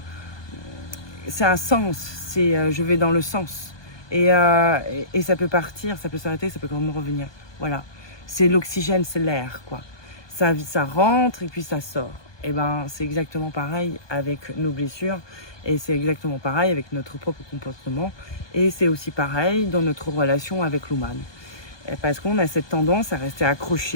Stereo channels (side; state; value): right; late; 1.2 ms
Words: sens. C'est je vais dans le sens. Et ça peut partir, ça peut s'arrêter, ça peut quand même revenir. Voilà. C'est l'oxygène, c'est l'air, quoi. Ça rentre et puis ça sort. Et c'est exactement pareil avec nos blessures. Et c'est exactement pareil avec notre propre comportement. Et c'est aussi pareil dans notre relation avec l'humain. Parce qu'on a cette tendance à rester